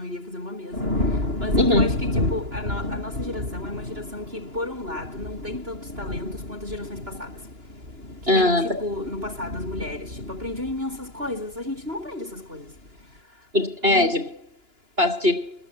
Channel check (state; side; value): late; left; 2.9 ms